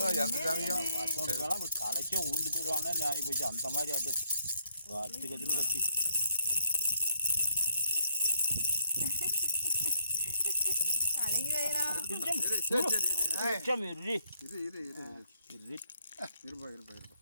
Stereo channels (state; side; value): inverted; both; correlation -0.70